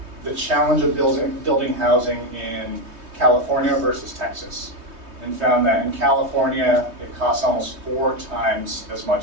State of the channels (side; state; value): left; late; 3.2 ms